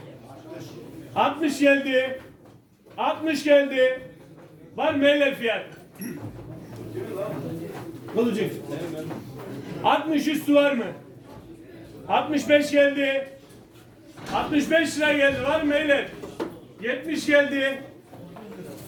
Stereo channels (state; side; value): identical; both; correlation 1.00